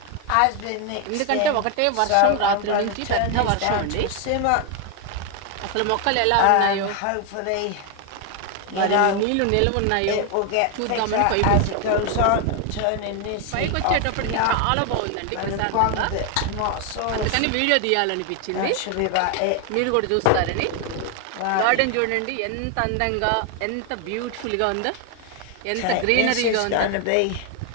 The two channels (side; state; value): both; different; correlation 0.01